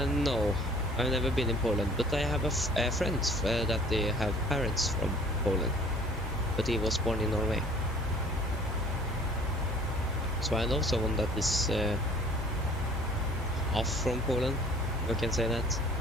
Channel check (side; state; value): both; normal; correlation 0.52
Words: No, I've never been in Poland, but I have a friend that they have parents from Poland, but he was born in Norway. So I know someone that is half from Poland, if I can say that.